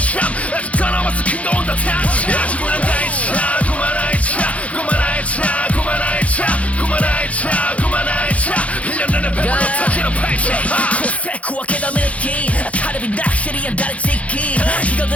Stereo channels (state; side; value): late; right; 0.065 ms